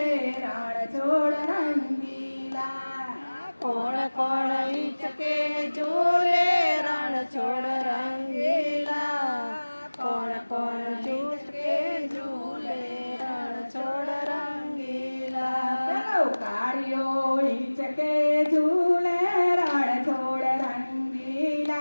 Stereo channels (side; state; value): both; inverted; correlation -1.00